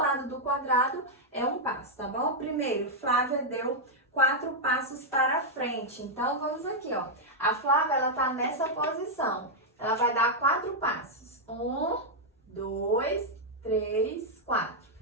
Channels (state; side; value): normal; both; correlation -0.03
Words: do quadrado é um passo, tá bom? Primeiro, Flávia deu 4 passos para frente. Então, vamos aqui, ó. A Flávia, ela tá nessa posição. Ela vai dar 4 passos. 1, 2, 3, 4.